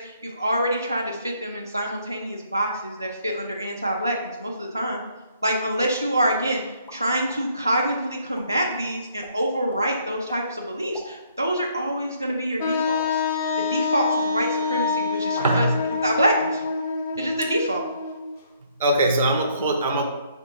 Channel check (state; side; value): inverted; both; correlation -0.67